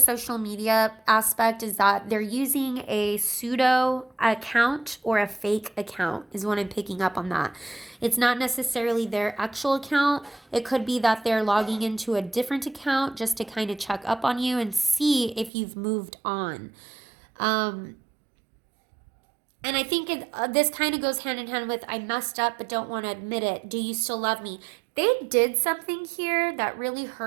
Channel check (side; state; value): left; drops out; at 15.5 s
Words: media aspect is that they're using a pseudo account or a fake account, is what I'm picking up on that. It's not necessarily their actual account. It could be that they're logging into a different account just to kind of check up on you and see if you've moved on. And I think this kind of goes hand in hand with I messed up but don't want to admit it. Do you still love me? They did something here that really